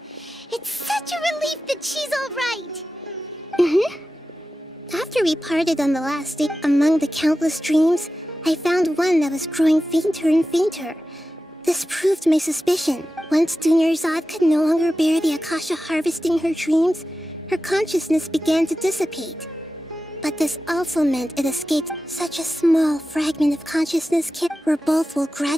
It's such a relief that she's all right. After we parted on the last day, among the countless dreams, I found one that was growing fainter and fainter. This proved my suspicion. Once Dunyarzad could no longer bear the Akasha harvesting her dreams, her consciousness began to dissipate. But this also meant it escaped such a small fragment of consciousness where both will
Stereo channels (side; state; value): both; normal; correlation 0.93